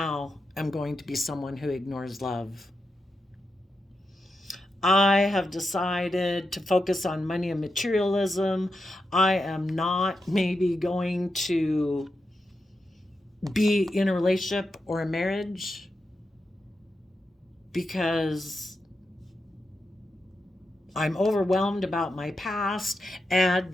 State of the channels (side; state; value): both; normal; correlation 0.87